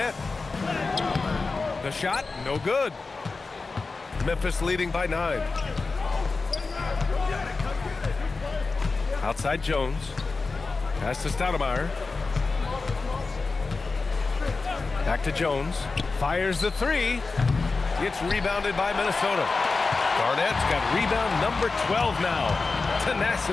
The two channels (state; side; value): quieter; right; 4.0 dB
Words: The shot, no good. Memphis leading by 9. Outside Jones. Pass to Stoudemire. Back to Jones. Fires the 3. It's rebounded by Minnesota. Garnett's got rebound number 12 now.